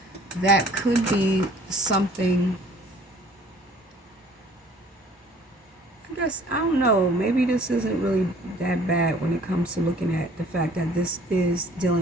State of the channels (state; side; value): normal; both; correlation 0.54